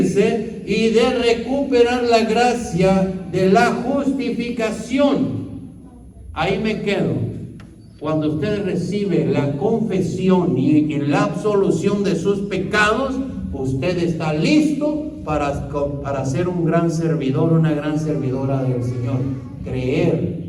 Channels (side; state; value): both; identical; correlation 1.00